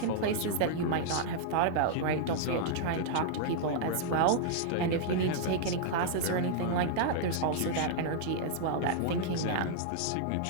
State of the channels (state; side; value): different; both; correlation -0.01